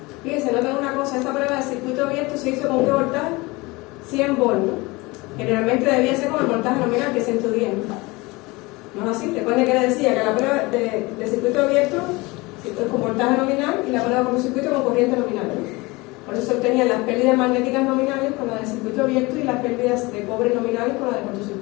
Fíjense, noten una cosa, esta prueba de circuito abierto se hizo con qué voltaje? 100 volts, ¿no? Generalmente debía ser con el voltaje nominal que es 110, ¿no? ¿No es así? Recuerden que les decía que la prueba de circuito abierto es con voltaje nominal y la prueba con circuito con corriente nominal, ¿no? Por eso se obtenían las pérdidas magnéticas nominales con la de circuito abierto y las pérdidas de cobre nominales con la de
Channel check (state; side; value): quieter; right; 23.5 dB